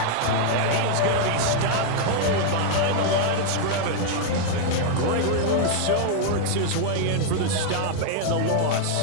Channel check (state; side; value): different; both; correlation 0.00